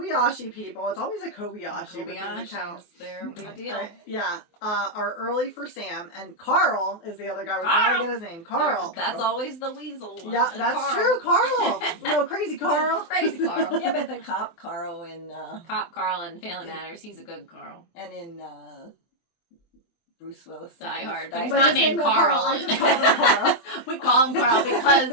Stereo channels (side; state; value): right; late; 23 ms